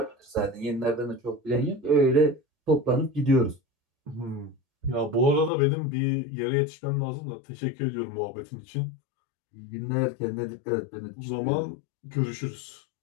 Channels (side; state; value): right; drops out; at 5.5 s